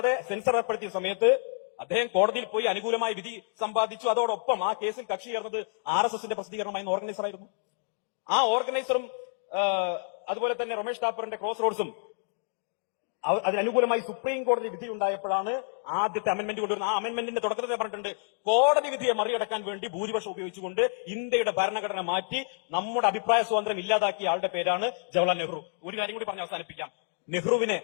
സെൻസർ ഏർപ്പെടുത്തിയ സമയത്ത് അദ്ദേഹം കോടതിയിൽ പോയി അനുകൂലമായ വിധി സമ്പാദിച്ചു. അതോടൊപ്പം ആ കേസിൽ കക്ഷി ചേർന്നത് RSSന്റെ പ്രസിദ്ധീകരണമായിരുന്ന ഓർഗനൈസർ ആയിരുന്നു. ആ ഓർഗനൈസറും അതുപോലെ തന്നെ റൊമേഷ് താപ്പറിന്റെ ക്രോസ് റോഡ്സും അതിനനുകൂലമായി സുപ്രീം കോടതി വിധി ഉണ്ടായപ്പോഴാണ് ആദ്യത്തെ അമെന്റ്മെന്റ് കൊണ്ടുവരുന്നത്. ആ അമെന്റ്മെന്റിന്റെ തുടക്കത്തിൽ പറഞ്ഞിട്ടുണ്ട്, കോടതി വിധിയെ മറികടക്കാൻ വേണ്ടി ഭൂരിപക്ഷം ഉപയോഗിച്ചുകൊണ്ട് ഇന്ത്യയുടെ ഭരണഘടന മാറ്റി നമ്മുടെ അഭിപ്രായ സ്വാതന്ത്ര്യം ഇല്ലാതാക്കിയ ആളുടെ പേരാണ് ജവഹർലാൽ നെഹ്റു. ഒരു കാര്യം കൂടി പറഞ്ഞ് അവസാനിപ്പിക്കാം. നെഹ്റുവിനെ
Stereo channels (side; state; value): right; silent; digital silence